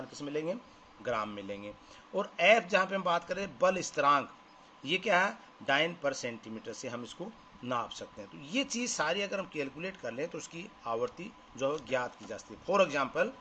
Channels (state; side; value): identical; both; correlation 1.00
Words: किस में लेंगे, ग्राम में लेंगे। और f जहाँ पे हम बात करें बल स्थिरांक, ये क्या है, डाइन पर सेंटीमीटर से हम इसको नाप सकते हैं। तो ये चीज़ सारी अगर हम कैलकुलेट कर लें तो उसकी आवर्ती जो है ज्ञात की जा सकती है। फॉर एग्जाम्पल